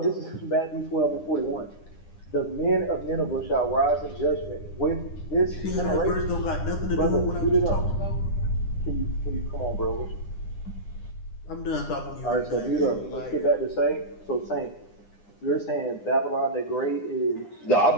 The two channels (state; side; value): late; right; 9.8 ms